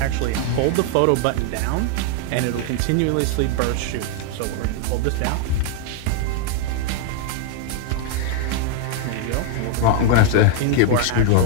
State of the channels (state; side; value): different; both; correlation 0.00